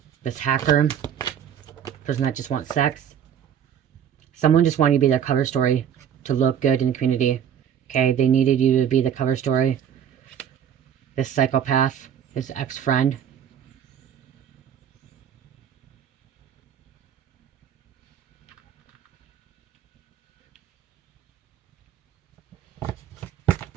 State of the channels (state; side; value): quieter; left; 9.0 dB